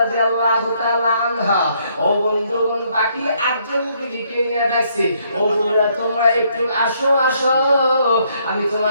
তাআলা আনহা ও বন্ধুগণ বাকি 8 জন বিবিকে নিয়ে ডাকছে, ও বন্ধুরা তোমরা একটু আসো আসো, আমি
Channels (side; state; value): both; inverted; correlation -0.70